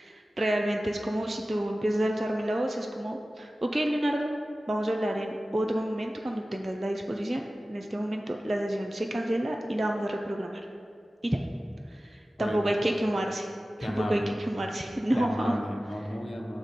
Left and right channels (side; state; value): both; normal; correlation 0.96